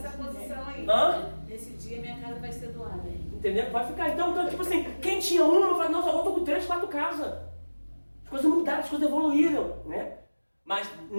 posição aí. Nesse dia minha casa vai ser doada. Entendeu? Vai ficar. Então, tipo assim, quem tinha uma, eu falei, nossa, agora eu tô com 3, 4 casas. As coisas mudaram, as coisas evoluíram, né? Mas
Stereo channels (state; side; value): inverted; both; correlation -1.00